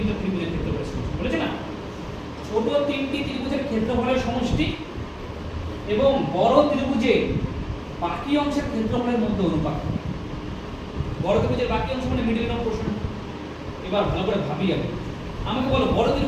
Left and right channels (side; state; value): both; identical; correlation 1.00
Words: ত্রিভুজের ক্ষেত্রফলের সমষ্টি বলেছে না। ছোট তিনটি ত্রিভুজের ক্ষেত্রফলের সমষ্টি এবং বড় ত্রিভুজের বাকি অংশের ক্ষেত্রফলের মধ্যে অনুপাত। বড় ত্রিভুজের বাকি অংশ মানে মিডল অফ পোরশন। এবার ভালো করে ভাবি আগে, আমাকে বলো বড়